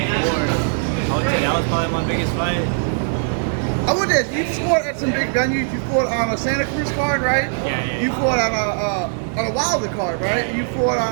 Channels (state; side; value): silent; left; 66 dB below the other